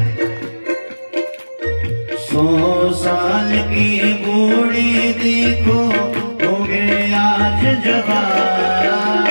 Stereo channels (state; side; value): inverted; both; correlation -1.00